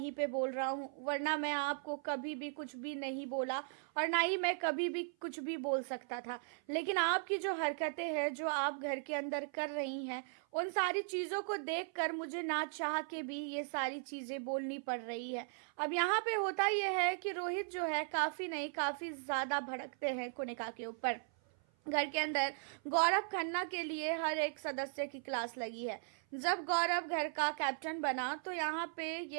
पे बोल रहा हूं, वरना मैं आपको कभी भी कुछ भी नहीं बोला और ना ही मैं कभी भी कुछ भी बोल सकता था। लेकिन आपकी जो हरकतें हैं, जो आप घर के अंदर कर रही हैं, उन सारी चीज़ों को देखकर मुझे ना चाह के भी ये सारी चीज़ें बोलनी पड़ रही है। अब यहाँ पे होता ये है कि रोहित जो है काफ़ी नहीं काफ़ी ज़्यादा भड़कते हैं कोनिका के ऊपर। घर के अंदर गौरव खन्ना के लिए हर एक सदस्य की क्लास लगी है। जब गौरव घर का कैप्टन बना तो यहाँ पे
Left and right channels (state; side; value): silent; left; 53 dB below the other